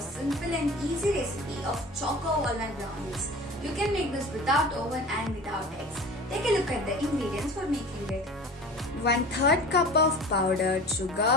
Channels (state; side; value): normal; both; correlation 0.38